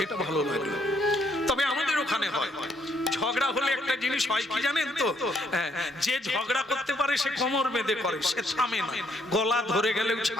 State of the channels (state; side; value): normal; both; correlation 0.70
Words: এটা ভালো লাগে। তবে আমাদের ওখানে হয়। ঝগড়া হলে একটা জিনিস হয় কি জানেন তো? যে ঝগড়া করতে পারে সে কোমর বেঁধে করে, সে থামে না, গলা ধরে গেলেও